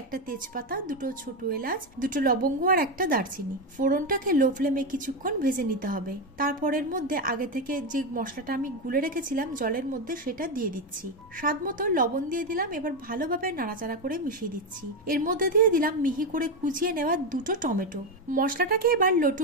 একটা তেজপাতা, 2টো ছোট এলাচ, 2টো লবঙ্গ আর একটা দারচিনি। ফোড়নটাকে লো ফ্লেমে কিছুক্ষণ ভেজে নিতে হবে। তারপর এর মধ্যে আগে থেকে যে মশলাটা আমি গুলে রেখেছিলাম জলের মধ্যে সেটা দিয়ে দিচ্ছি। স্বাদ মতো লবণ দিয়ে দিলাম। এবার ভালোভাবে নাড়াচাড়া করে মিশিয়ে দিচ্ছি। এর মধ্যে দিয়ে দিলাম মিহি করে কুচিয়ে নেওয়া 2টো টমেটো। মশলাটাকে এবার লো টু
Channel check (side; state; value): both; normal; correlation 0.10